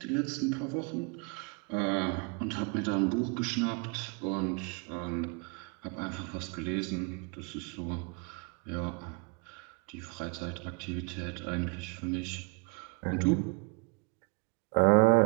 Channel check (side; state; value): left; quieter; 33.1 dB